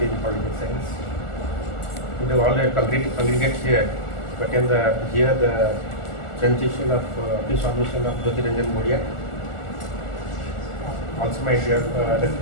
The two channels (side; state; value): right; late; 1.4 ms